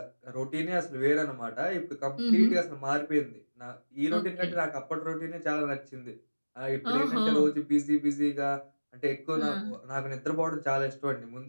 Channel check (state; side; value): inverted; both; correlation -1.00